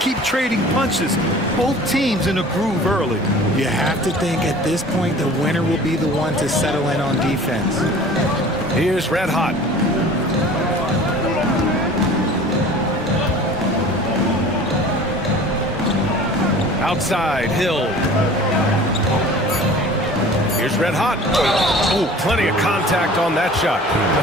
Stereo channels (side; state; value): both; normal; correlation 0.44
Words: trading punches. Both teams in a groove early. You have to think at this point the winner will be the one to settle in on defense. Here's Red Hot. Outside, Hill. Here's Red Hot. Oh, plenty of contact on that shot.